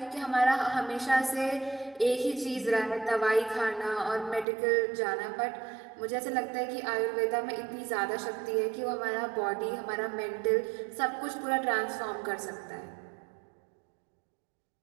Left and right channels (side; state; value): left; drops out; at 4.5 s